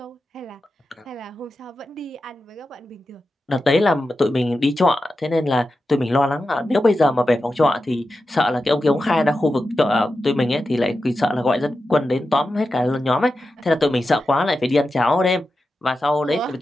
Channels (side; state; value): both; normal; correlation 0.91